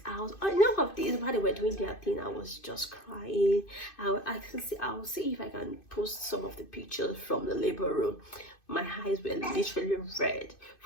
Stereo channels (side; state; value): right; late; 2.5 ms